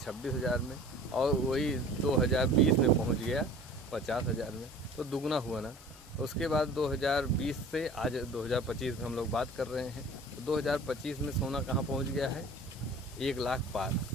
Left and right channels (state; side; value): normal; both; correlation 0.44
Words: में और वही 2020 में पहुंच गया 50,000 में, तो दुगना हुआ ना। उसके बाद 2020 से आज 2025 में हम लोग बात कर रहे हैं, तो 2025 में सोना कहाँ पहुँच गया है, 1 लाख पार।